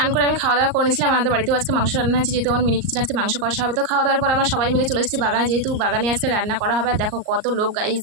করে আমি খাওয়া দাওয়া করে নিয়েছিলাম। আমাদের বাড়িতেও আজকে মাংস রান্না হয়েছে, যেহেতু আমার মিনি কিচেন আজকে মাংস কষা হবে। তো খাওয়া দাওয়ার পর আমরা সবাই মিলে চলে এসেছি বাগানে, যেহেতু বাগানে আজকে রান্না করা হবে। আর দেখো কত লোক গাইস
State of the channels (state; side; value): late; left; 38 ms